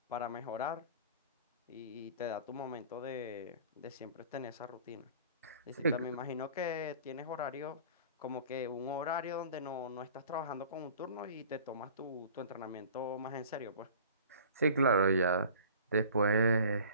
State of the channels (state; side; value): inverted; both; correlation -0.46